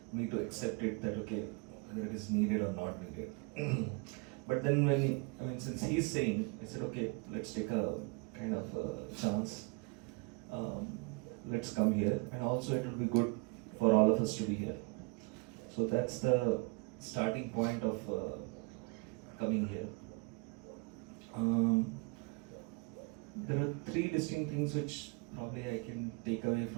me to accept it that okay, whether it is needed or not needed. But then when, I mean, since he's saying, I said, okay, let's take a kind of a chance. Let's come here, and also it will be good for all of us to be here. So that's the starting point of coming here. There are 3 distinct things which probably I can take away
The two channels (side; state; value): left; quieter; 29.7 dB